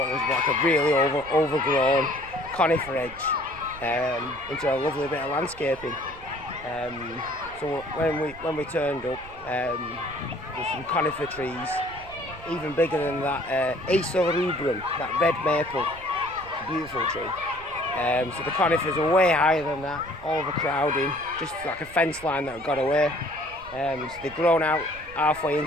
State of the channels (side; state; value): right; noise; rumble, 19 dB below the sound